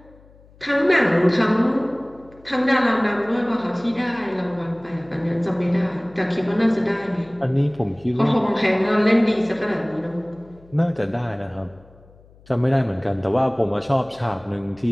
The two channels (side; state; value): left; noise; hum, 26 dB below the sound